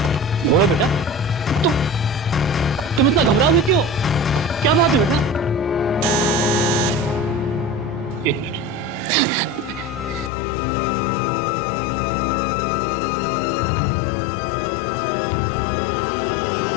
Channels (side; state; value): right; drops out; at 10.3 s